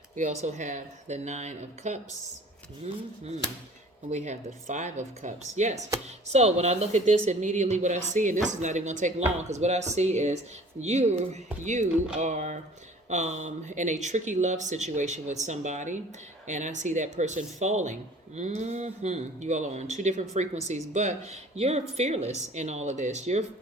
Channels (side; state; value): both; normal; correlation 0.48